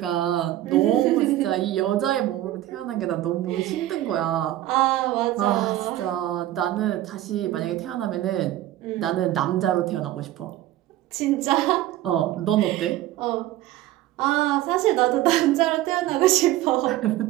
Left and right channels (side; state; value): left; quieter; 14.5 dB